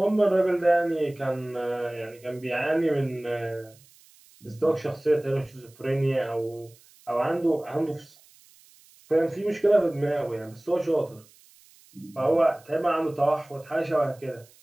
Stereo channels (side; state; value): right; noise; hiss, 27 dB below the sound